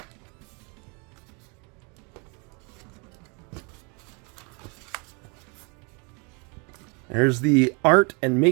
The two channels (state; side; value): quieter; left; 32.7 dB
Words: There's the art and